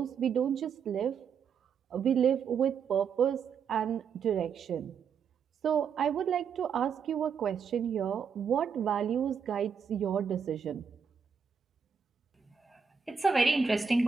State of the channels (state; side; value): quieter; left; 6.5 dB